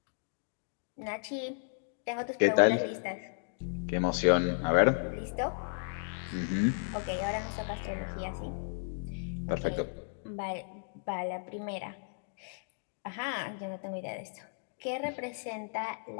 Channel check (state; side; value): silent; right; digital silence